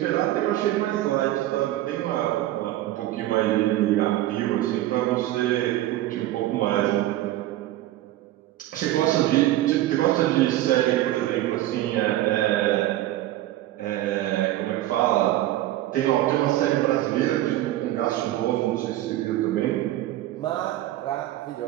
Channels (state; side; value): quieter; left; 14.8 dB